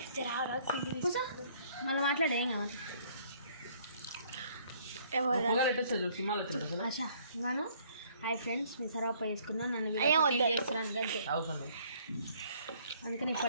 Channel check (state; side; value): inverted; both; correlation -0.61